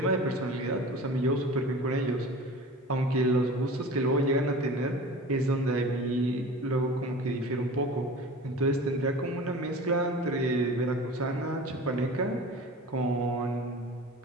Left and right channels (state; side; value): normal; both; correlation 0.38